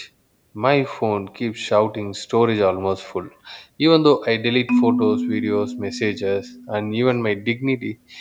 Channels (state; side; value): identical; both; correlation 1.00